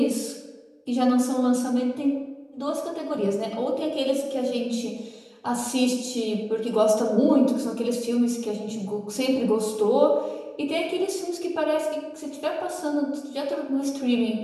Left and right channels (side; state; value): both; identical; correlation 1.00